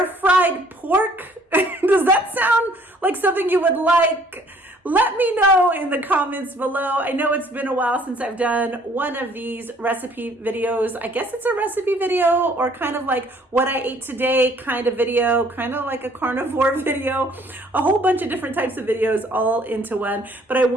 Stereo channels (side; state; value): both; normal; correlation 0.59